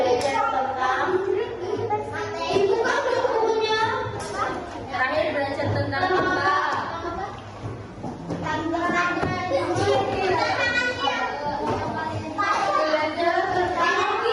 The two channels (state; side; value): identical; both; correlation 1.00